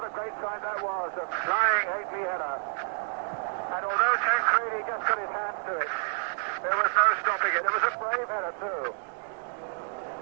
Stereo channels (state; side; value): silent; left; digital silence